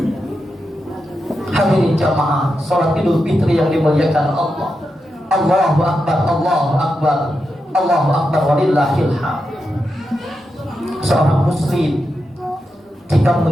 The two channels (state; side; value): normal; both; correlation 0.87